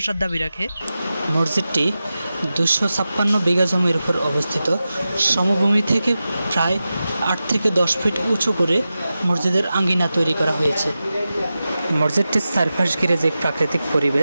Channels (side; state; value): both; inverted; correlation -0.93